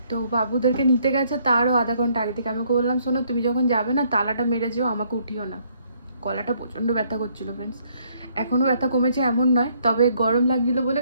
তো বাবুদেরকে নিতে গেছে তারও আধা ঘন্টা আগে থেকে। আমি ওকে বললাম শোনো, তুমি যখন যাবে না তালাটা মেরে যেও, আমাকে উঠিও না। গলাটা প্রচণ্ড ব্যথা করছিল ফ্রেন্ডস, এখনও ব্যথা কমেছে এমন নয়, তবে গরম লাগছিল বলে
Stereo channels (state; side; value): inverted; both; correlation -0.68